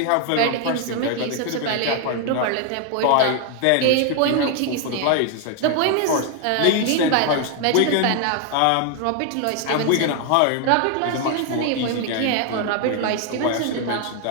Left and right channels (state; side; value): different; both; correlation 0.00